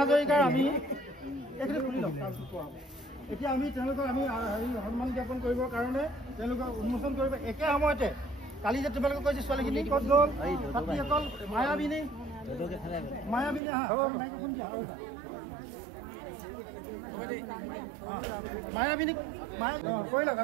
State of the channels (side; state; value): left; drops out; at 13.6 s